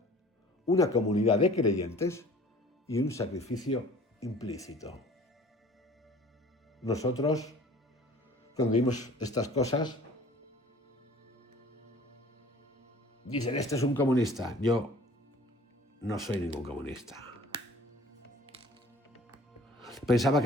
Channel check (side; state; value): both; normal; correlation 0.48